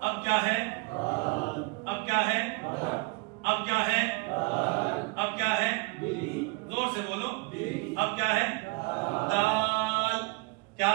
अब क्या है? अब क्या है? अब क्या है? अब क्या है? जोर से बोलो। अब क्या है? दाल। क्या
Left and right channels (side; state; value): left; quieter; 27.5 dB